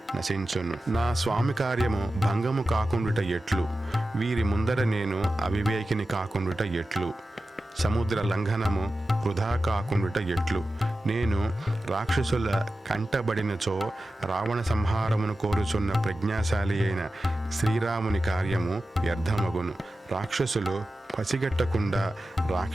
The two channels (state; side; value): normal; both; correlation 0.93